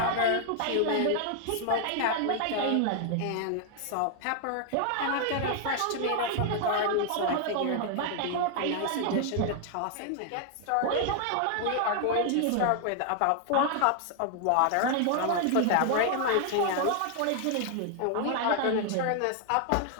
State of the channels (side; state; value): both; different; correlation 0.00